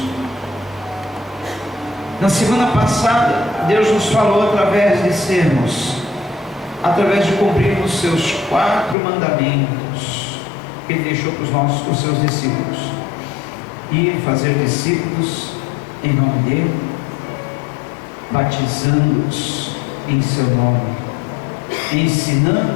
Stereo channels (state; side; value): drops out; right; at 9.0 s